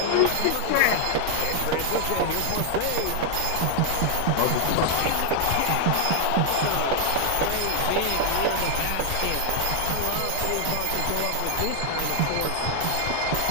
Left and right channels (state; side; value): different; both; correlation 0.00